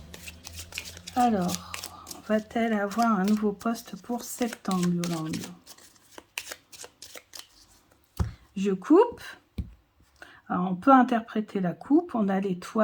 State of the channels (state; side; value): identical; both; correlation 1.00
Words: Alors, va-t-elle avoir un nouveau poste pour septembre, Yolande? Je coupe. Alors, on peut interpréter la coupe. On a